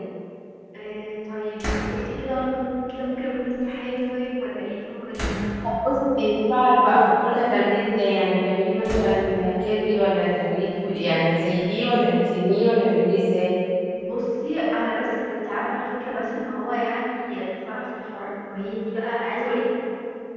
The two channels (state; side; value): identical; both; correlation 1.00